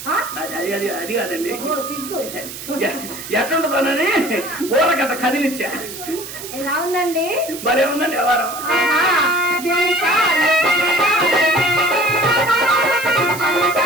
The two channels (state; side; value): noise; right; hiss, 11 dB below the sound